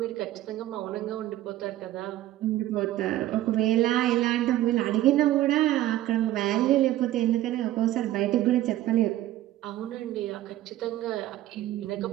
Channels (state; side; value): quieter; left; 14.4 dB